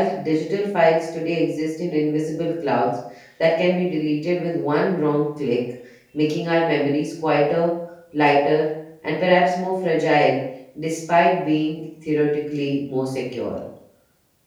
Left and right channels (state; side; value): identical; both; correlation 1.00